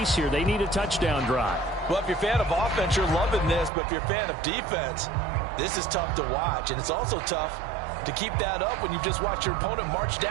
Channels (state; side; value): drops out; left; at 3.7 s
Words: here. They need a touchdown drive. Well, if you're a fan of offense, you're loving this, but if you're a fan of defense, this is tough to watch, and it's also tough to keep that up when you just watch your opponent march